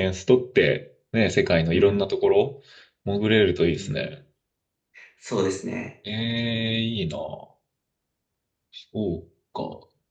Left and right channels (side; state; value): both; identical; correlation 1.00